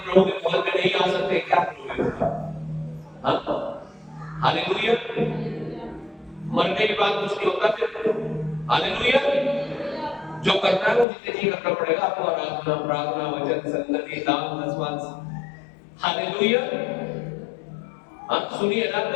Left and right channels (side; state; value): right; drops out; at 11.1 s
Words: के भवन में नहीं आ सकते, क्या करोगे? हालेलुया। मरने के बाद कुछ नहीं होता फिर। हालेलुया। जो करना है वो जितने जी करना पड़ेगा आपको, आराधना, प्रार्थना, वचन, संगति, दान, दसवां। हालेलुया। आप सुनिए ना,